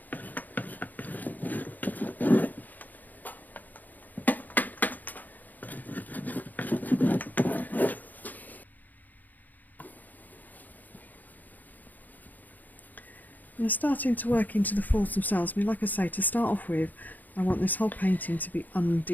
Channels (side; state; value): right; late; 0.083 ms